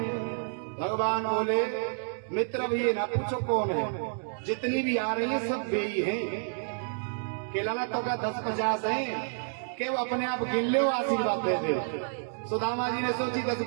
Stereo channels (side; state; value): left; silent; digital silence